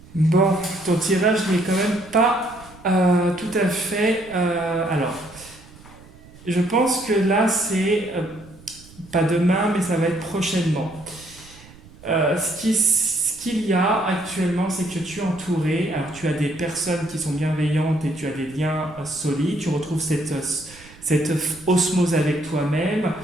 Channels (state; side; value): noise; right; rumble, 22 dB below the sound